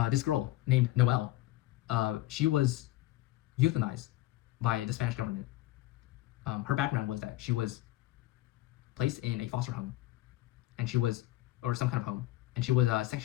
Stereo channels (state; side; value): quieter; right; 17.1 dB